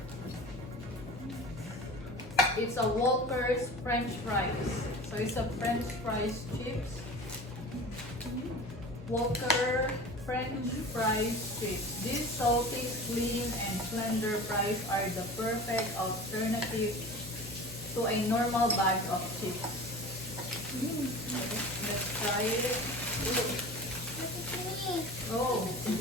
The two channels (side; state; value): both; normal; correlation 0.36